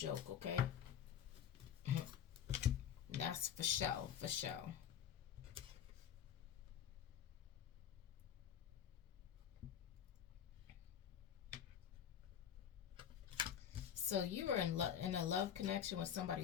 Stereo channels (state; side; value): quieter; right; 9.3 dB